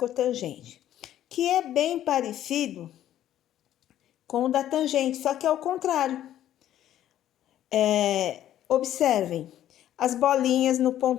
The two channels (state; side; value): quieter; right; 12.0 dB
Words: que é bem parecido com o da tangente, só que é o contrário. Observem as bolinhas no